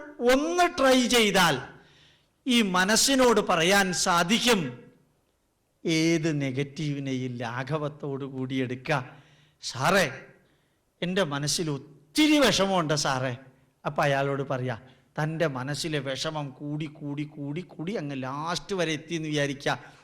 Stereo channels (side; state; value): both; identical; correlation 1.00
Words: ഒന്ന് ട്രൈ ചെയ്താൽ ഈ മനസ്സിനോട് പറയാൻ സാധിക്കും, ഏത് നെഗറ്റീവിനെയും ലാഘവത്തോടു കൂടി എടുക്കുക. സാറേ, എൻ്റെ മനസ്സിൽ ഒത്തിരി വിഷമമുണ്ട് സാറേ. അപ്പം അയാളോട് പറയാം, തൻ്റെ മനസ്സിലെ വിഷമം കൂടി കൂടി കൂടി കൂടി അങ്ങ് ലാസ്റ്റ് വരെ എത്തിയെന്ന് വിചാരിക്കുക.